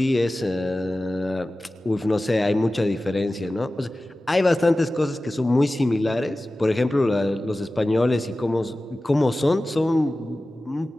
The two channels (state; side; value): normal; both; correlation 0.96